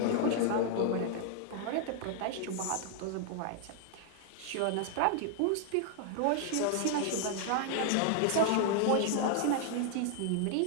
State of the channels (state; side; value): different; both; correlation 0.00